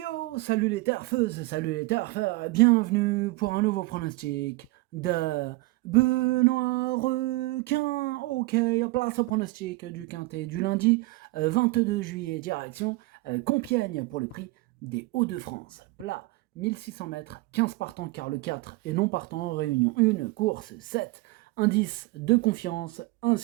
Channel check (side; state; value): left; quieter; 21.5 dB